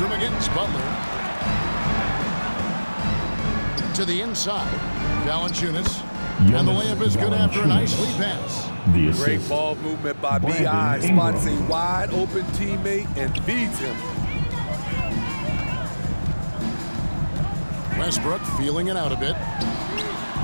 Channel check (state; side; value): inverted; both; correlation -1.00